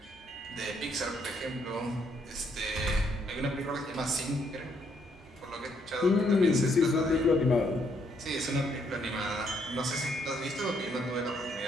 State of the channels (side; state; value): both; normal; correlation 0.72